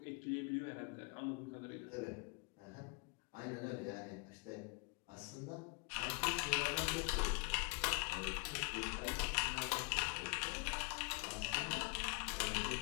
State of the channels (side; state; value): right; quieter; 31.3 dB